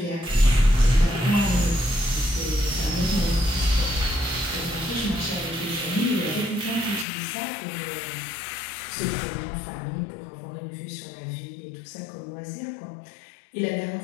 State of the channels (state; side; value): drops out; right; at 7.1 s